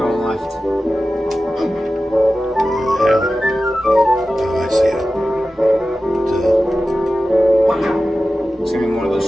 left. Yeah. Oh, I see it. It's gonna be more of those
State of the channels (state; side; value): normal; both; correlation 0.94